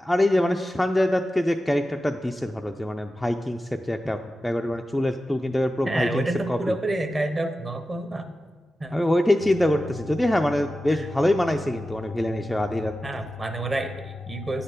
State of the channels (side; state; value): both; normal; correlation 0.93